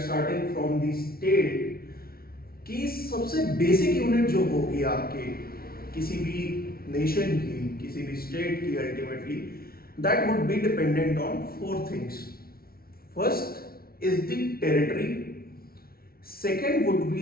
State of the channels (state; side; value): late; right; 0.44 ms